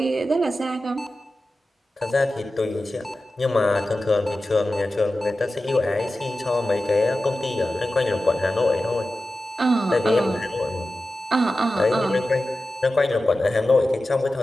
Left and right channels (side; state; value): both; normal; correlation 0.94